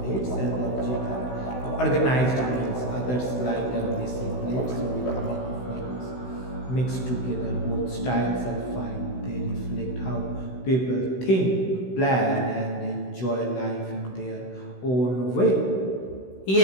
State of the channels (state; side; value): late; right; 16 ms